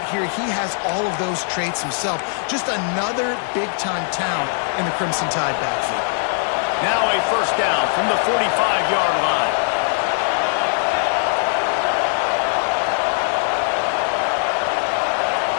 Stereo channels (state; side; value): silent; right; 60 dB below the other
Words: here, he has all of those traits himself. Just another big-time talent in the Crimson Tide backfield. Now a 1st down from the 45-yard line.